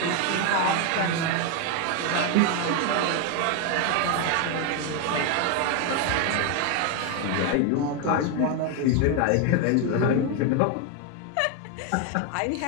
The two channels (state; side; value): different; both; correlation 0.01